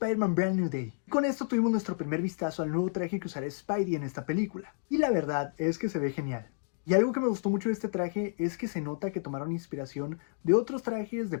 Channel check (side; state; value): right; silent; digital silence